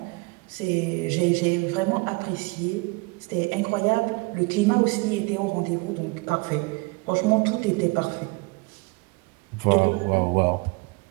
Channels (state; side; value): quieter; left; 26.9 dB